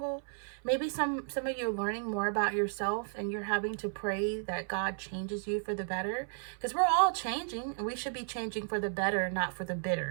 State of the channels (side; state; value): left; silent; 55 dB below the other